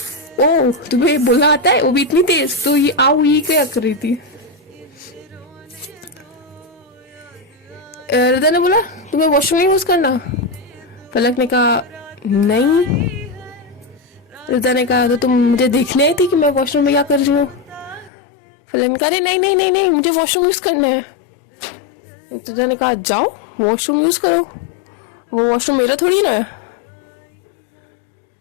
ओ तुम्हें बोलना आता है, वो भी इतनी तेज? तो ये आओ ये क्या कर रही थी? रिदा ने बोला तुम्हें वॉशरूम यूज करना? फलक ने कहा नहीं। रिदा ने कहा तो तुम मुझे देखने आई थी कि मैं वॉशरूम में क्या कर रही हूँ? फलक ने कहा अरे नहीं नहीं नहीं नहीं मुझे वॉशरूम यूज करना है। रिदा ने कहा जाओ वॉशरूम यूज करो, वो वॉशरूम मेरा थोड़ी ना है।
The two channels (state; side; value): drops out; right; at 18.1 s